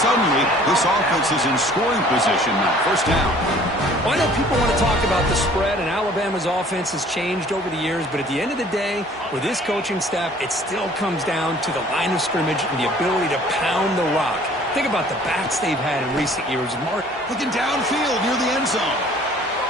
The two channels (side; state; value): both; normal; correlation 0.53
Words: this offense is in scoring position now. First down. Well, I know people want to talk about the spread, and Alabama's offense has changed over the years, but at the end of the day, with this coaching staff, it still comes down to the line of scrimmage and the ability to pound the rock. Think about the backs they've had in recent years. Mark looking downfield near the end zone.